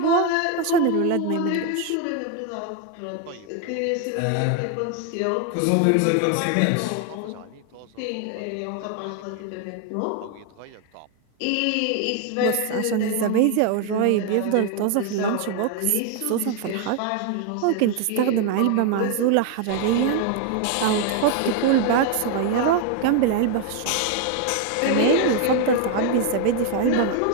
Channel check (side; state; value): both; different; correlation 0.01